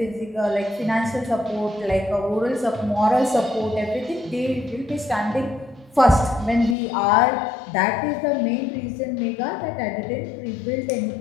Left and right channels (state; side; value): drops out; right; at 6.8 s